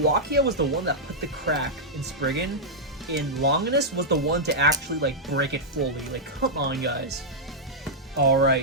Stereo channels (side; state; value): both; normal; correlation -0.07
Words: was the one that put the crack in Spriggan, and Longinus was the one to actually like break it fully. Like, come on, guys.